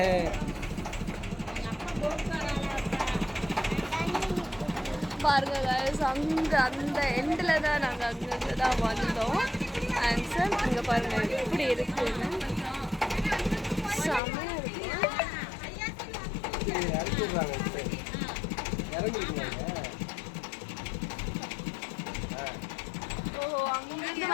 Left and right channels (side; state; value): right; drops out; at 14.2 s